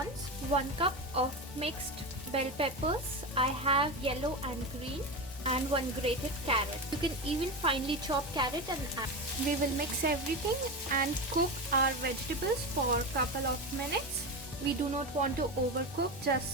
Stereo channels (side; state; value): both; normal; correlation 0.19